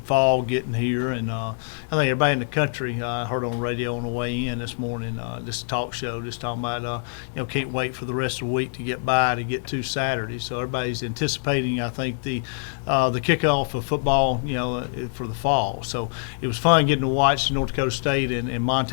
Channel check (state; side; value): silent; right; digital silence